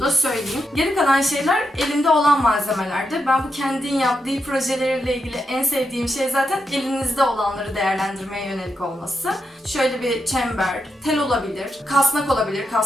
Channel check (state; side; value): normal; both; correlation 0.84